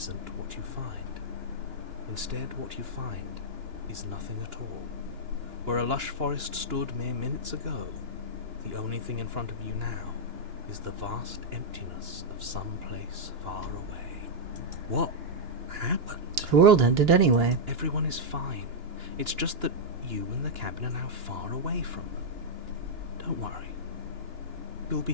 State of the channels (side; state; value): left; late; 2.9 ms